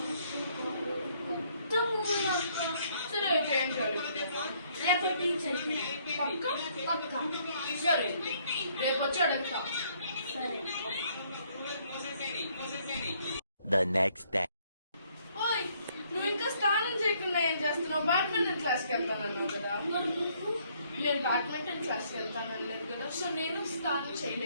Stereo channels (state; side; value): inverted; both; correlation -0.67